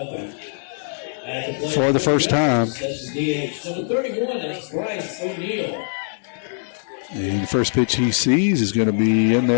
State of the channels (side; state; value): right; silent; 63 dB below the other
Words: for the first time. That's DH. Number 31, that's Bryce O'Neal. And the first pitch he sees is going to be in